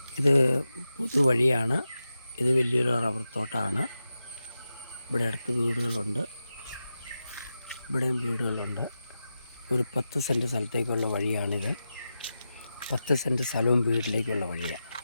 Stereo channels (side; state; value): both; inverted; correlation -0.91